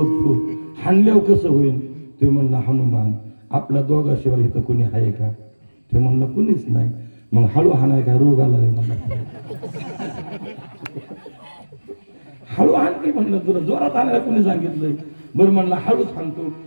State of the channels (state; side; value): inverted; both; correlation -1.00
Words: हाणल्यावर कसं होईल? ते म्हणलं हनुमान आपल्या दोघाशिवाय इथं कोणी आहे का? ते म्हणलं कुणीच नाही. मग हळू हाणाय काय रोग आला रे मला? हळू हाण की म्हणलं, तुला जोरात हाणायला कोणी सांगितलंय? बरं म्हणलं हळूच हाणतो.